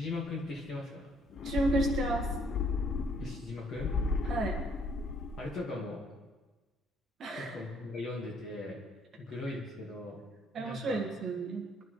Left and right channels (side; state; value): both; normal; correlation 0.64